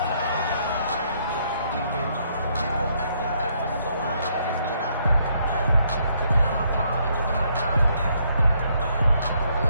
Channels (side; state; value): both; inverted; correlation -0.71